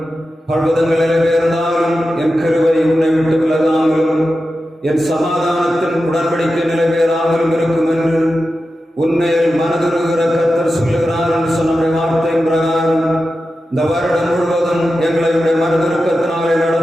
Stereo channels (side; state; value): both; normal; correlation 0.91